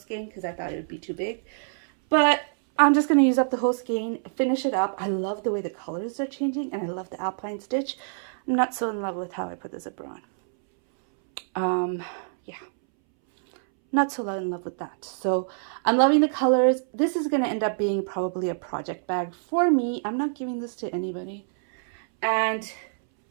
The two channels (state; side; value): silent; left; 61 dB below the other